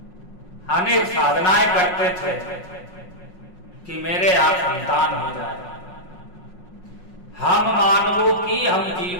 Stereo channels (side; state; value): right; late; 5.5 ms